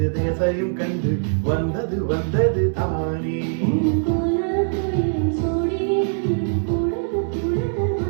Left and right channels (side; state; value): left; silent; 64 dB below the other